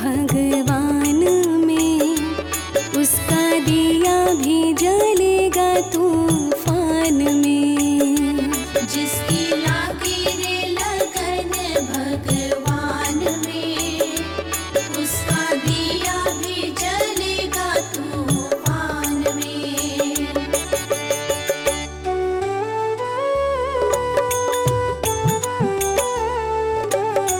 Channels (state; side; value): identical; both; correlation 1.00